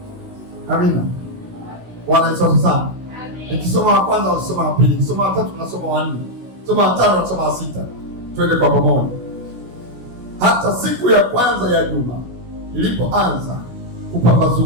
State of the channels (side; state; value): left; late; 16 ms